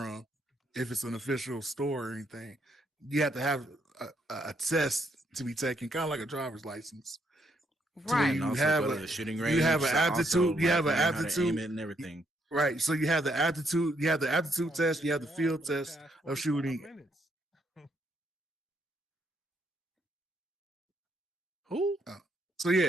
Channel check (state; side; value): normal; both; correlation 0.74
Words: if it's an official store or anything. You have to have a test to be taken, kind of like a driver's license, to where Right. And you also have go to the shooting you have range an to also aptitude, you have an learn how to aim aptitude, it and everything. right? So you have the aptitude, test, you have the field For the test past of 45 shooting. minutes. Who? So